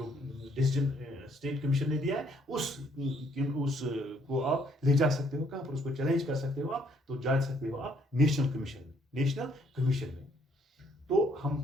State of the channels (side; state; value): both; normal; correlation 0.66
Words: डिसीजन स्टेट कमीशन ने दिया है उस को आप ले जा सकते हो। कहां पर? उसको चैलेंज कर सकते हो आप, तो जा सकते हो आप नेशनल कमीशन में, नेशनल कमीशन में। तो